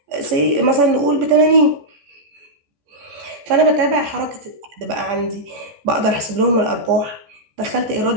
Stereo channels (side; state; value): left; late; 15 ms